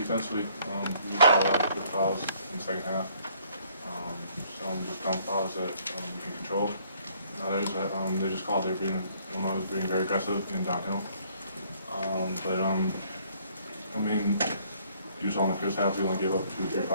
We saw a lot of good fouls in the second half. Some just dumb fouls that we can control. And others that they just called. They were being, Illinois was being very aggressive and downhill. I mean, you saw in the first half we only gave up 2 or 3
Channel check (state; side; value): inverted; both; correlation -0.62